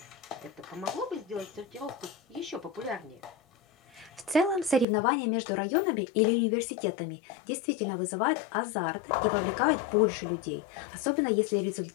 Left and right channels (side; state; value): right; drops out; at 4.9 s